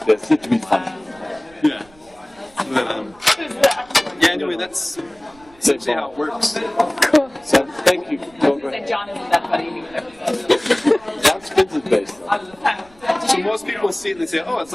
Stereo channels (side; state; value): right; noise; rumble, 28 dB below the sound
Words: this. It would be fun. Yeah. But, yeah. Anyway, that's essentially how it works. Cool. So thank you. John isn't that funny. John spins his bass. So most people see it and they say, oh, it's